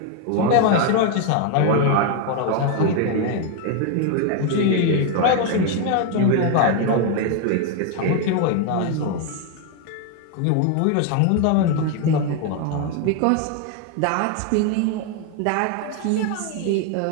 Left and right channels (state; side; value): different; both; correlation 0.01